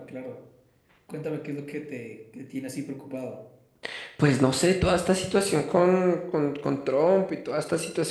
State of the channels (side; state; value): both; identical; correlation 1.00